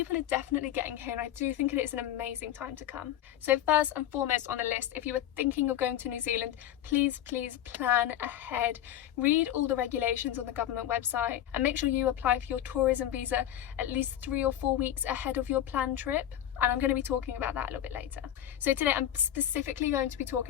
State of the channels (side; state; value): right; quieter; 11.6 dB